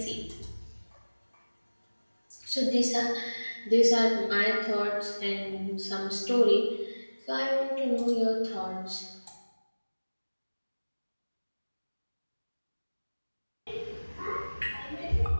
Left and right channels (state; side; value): inverted; both; correlation -1.00